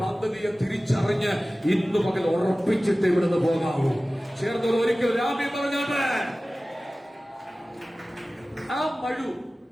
പദ്ധതിയെ തിരിച്ചറിഞ്ഞ് ഇന്ന് പകൽ ഉറപ്പിച്ചിട്ട് ഇവിടുന്ന് പോകാവൂ. ചേർന്നവർ ഒരിക്കൽ രാമി പറഞ്ഞത്. ആ മഴു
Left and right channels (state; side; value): normal; both; correlation 0.97